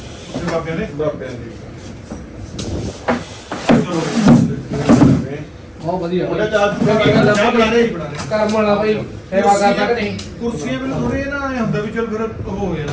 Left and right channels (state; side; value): identical; both; correlation 1.00